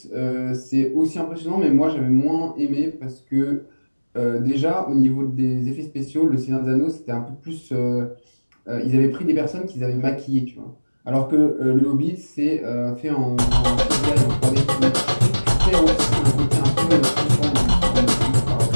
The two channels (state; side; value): inverted; both; correlation -1.00